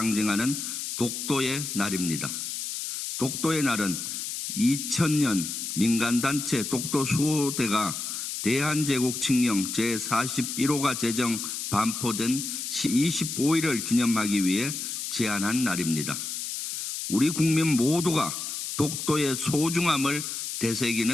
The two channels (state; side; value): noise; left; hiss, 5 dB below the sound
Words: 독도의 날입니다. 독도의 날은 2000년 민간단체 독도수호대가 대한제국 칙령 제41호가 제정 반포된 25일을 기념하기 위해 제안한 날입니다. 우리 국민 모두가 독도의 소중함을